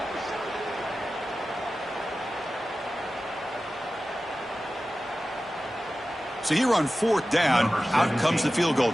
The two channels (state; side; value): normal; both; correlation 0.95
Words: So here on 4th down, out comes the field goal